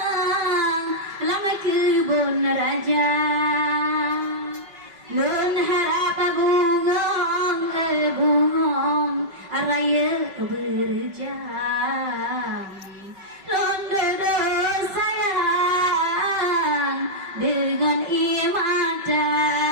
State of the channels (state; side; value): late; left; 5.3 ms